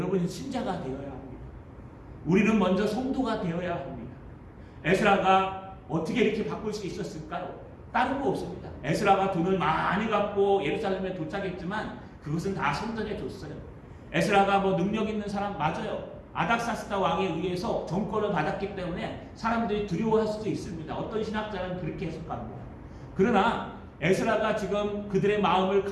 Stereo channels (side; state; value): both; identical; correlation 1.00